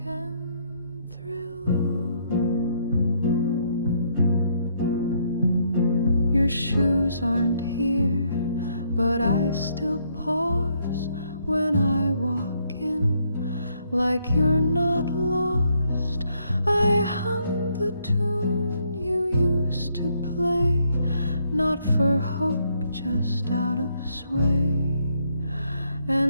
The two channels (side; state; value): both; inverted; correlation -0.72